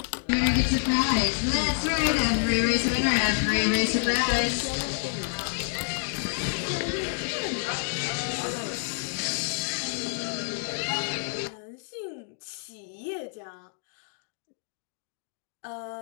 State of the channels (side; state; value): right; silent; digital silence